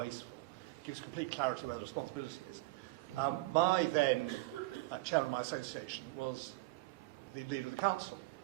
It gives complete clarity where the responsibility is. My then chairman of my association was the leader of the council.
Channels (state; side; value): quieter; left; 21.3 dB